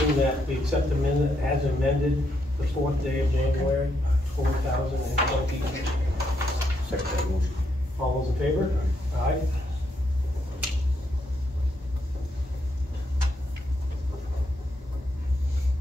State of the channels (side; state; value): both; normal; correlation 0.78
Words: that we accept the minute as amended the 4th day of January, 2020. Second that motion. All those in favor? Aye.